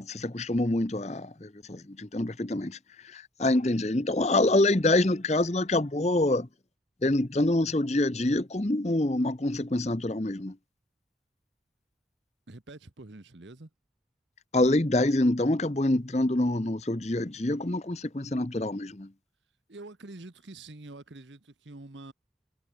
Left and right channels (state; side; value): normal; both; correlation 0.61